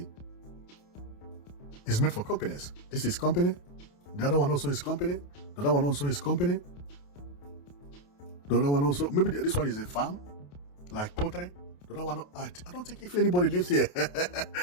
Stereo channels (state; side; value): late; right; 28 ms